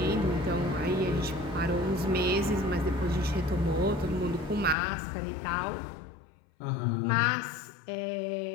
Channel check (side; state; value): right; drops out; at 4.8 s